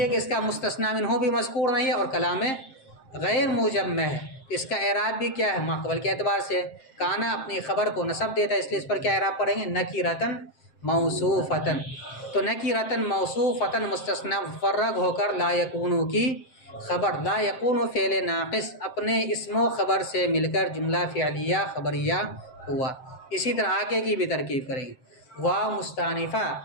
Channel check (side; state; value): right; late; 7.6 ms